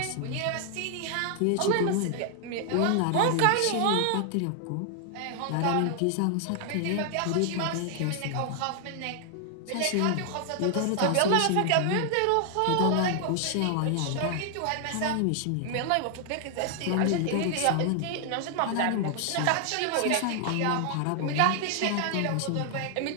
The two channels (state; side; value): different; both; correlation 0.00